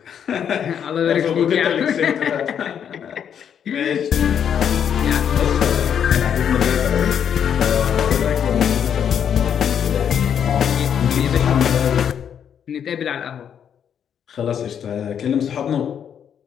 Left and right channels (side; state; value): right; quieter; 8.4 dB